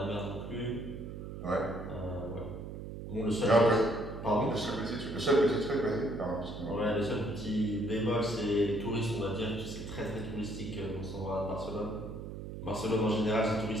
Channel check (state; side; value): noise; right; hum, 9 dB below the sound